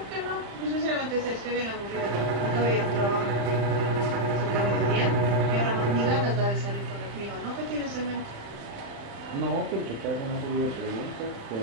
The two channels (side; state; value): left; late; 35 ms